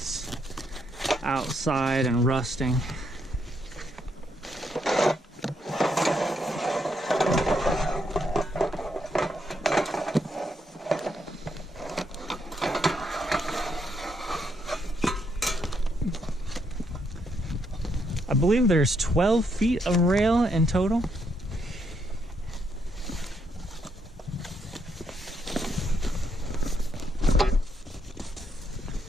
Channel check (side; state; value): both; normal; correlation 0.76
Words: outside and rusting. I believe there's 12 feet of rail in total.